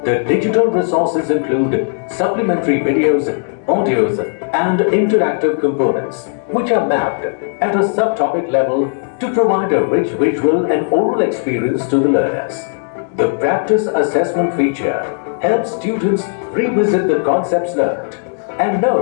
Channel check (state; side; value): silent; right; 69 dB below the other